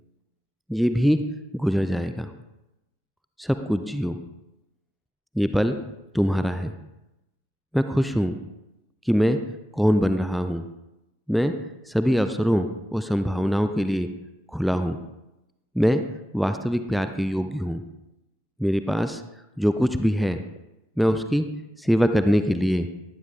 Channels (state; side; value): normal; both; correlation 0.94